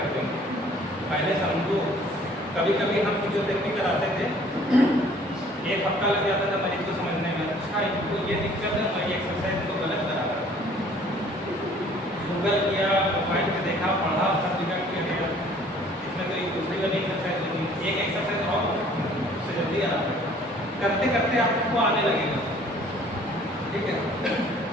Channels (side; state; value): both; normal; correlation 0.55